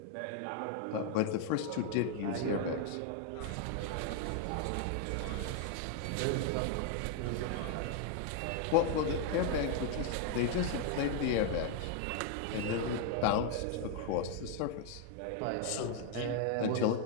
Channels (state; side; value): different; both; correlation 0.00